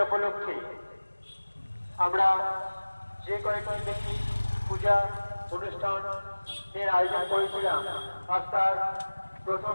উপলক্ষে আমরা যে কয়েকটি পূজা অনুষ্ঠানের আয়োজন করেছিলাম আজ তার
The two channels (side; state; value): both; inverted; correlation -1.00